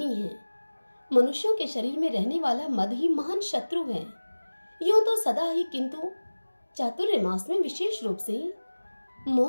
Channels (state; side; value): inverted; both; correlation -1.00